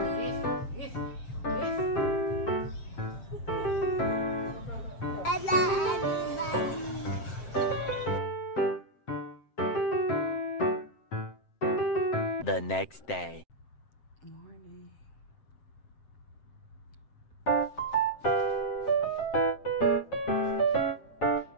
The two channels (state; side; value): late; right; 7.7 ms